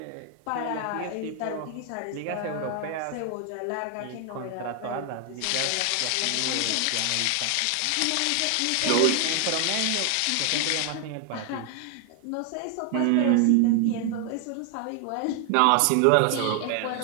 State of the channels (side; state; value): both; different; correlation 0.00